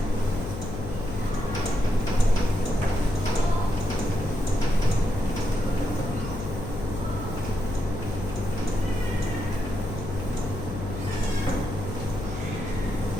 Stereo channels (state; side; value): noise; left; hum, 7 dB below the sound